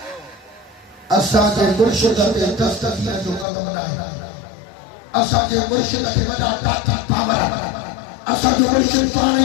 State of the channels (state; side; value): drops out; right; at 3.5 s